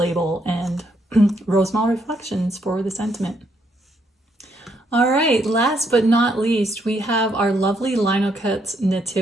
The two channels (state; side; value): normal; both; correlation 0.74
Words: and Rosemal Reflections for the sentiment. All right, last but not least, we have our Lovely Linocuts